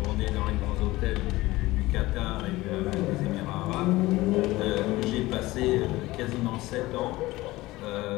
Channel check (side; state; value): right; quieter; 19.0 dB